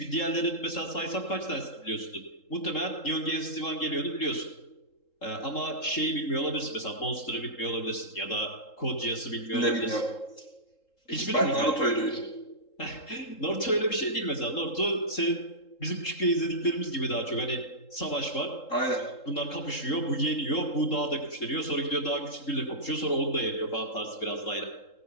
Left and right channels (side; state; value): right; late; 3.7 ms